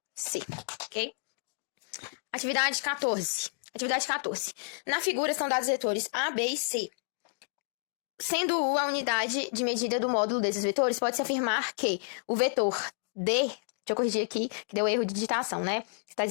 C, ok? Atividade 14. Atividade 14. Na figura estão dados os vetores A, B e C. Sendo U a unidade de medida do módulo desses vetores, pode-se afirmar que o vetor D, deixa eu corrigir aqui, que deu erro de digitação, né? Está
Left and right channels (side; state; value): right; silent; digital silence